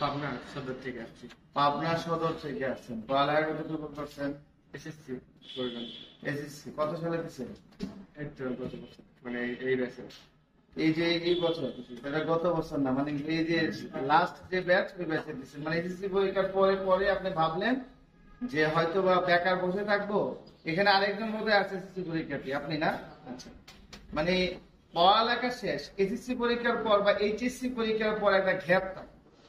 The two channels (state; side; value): identical; both; correlation 1.00